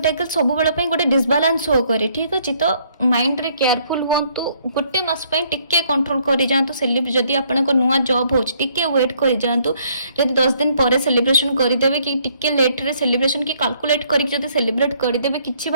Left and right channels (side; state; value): both; inverted; correlation -0.66